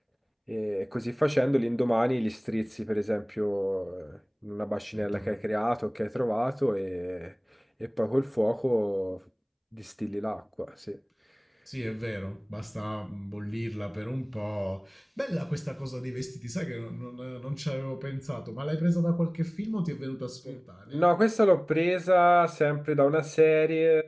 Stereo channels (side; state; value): both; identical; correlation 1.00